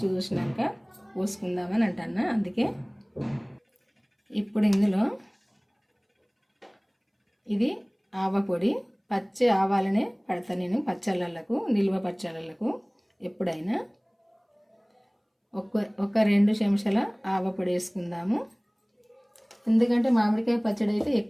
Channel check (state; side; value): identical; both; correlation 1.00